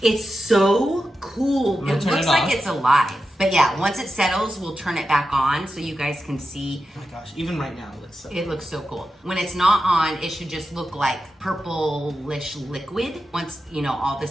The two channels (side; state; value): both; normal; correlation 0.90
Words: It's so cool. I'm gonna It turn looks it like off. it's alive. But yeah, once it settles, we'll turn it back on so you guys can see. Oh my gosh, even right now it looks so It looks so cool. When it's not on, it should just look like purplish liquid. Once, you know, all